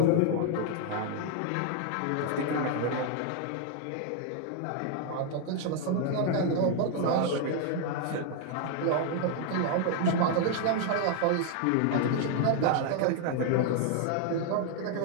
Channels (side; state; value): both; different; correlation 0.00